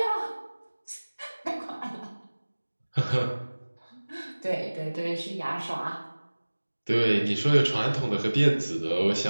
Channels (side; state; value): both; inverted; correlation -1.00